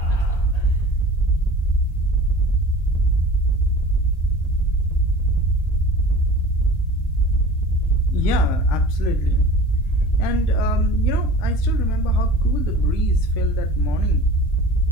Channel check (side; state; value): right; late; 1.8 ms